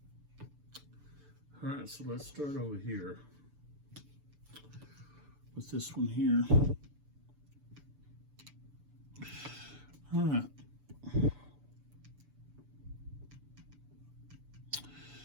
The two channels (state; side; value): late; left; 6.9 ms